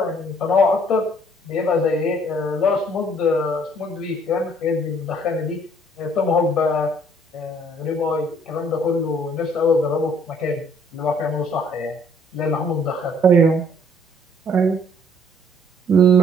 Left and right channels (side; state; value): both; normal; correlation 0.60